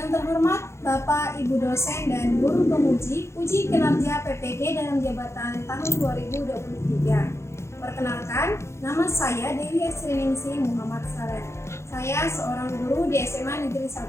terhormat Bapak, Ibu dosen dan guru penguji uji kinerja PPG dalam jabatan tahun 2023. Perkenalkan, nama saya Dewi Esriningsih Muhammad Saleh. Saya seorang guru di SMA Negeri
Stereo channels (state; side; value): late; right; 0.13 ms